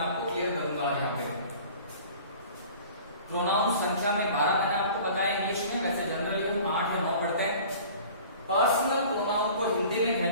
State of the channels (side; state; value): both; inverted; correlation -0.45